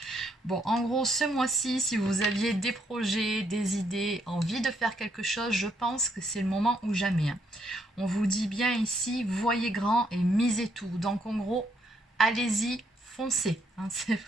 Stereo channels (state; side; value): normal; both; correlation 0.73